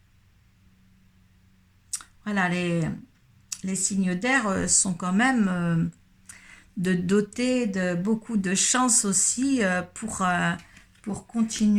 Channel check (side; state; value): both; identical; correlation 1.00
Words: Voilà, les signes d'air sont quand même... de doter de beaucoup de chance aussi pour